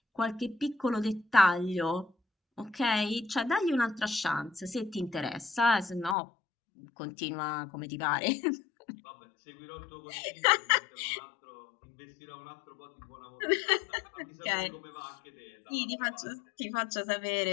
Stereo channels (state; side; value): drops out; right; at 6.2 s